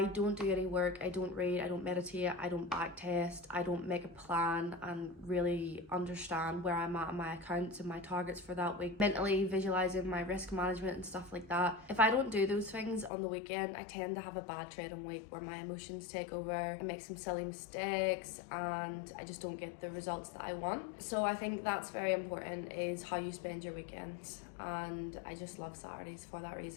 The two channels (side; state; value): right; drops out; at 13.1 s